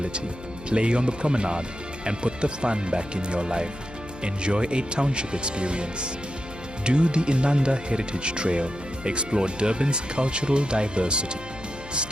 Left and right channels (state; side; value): noise; left; hum, 16 dB below the sound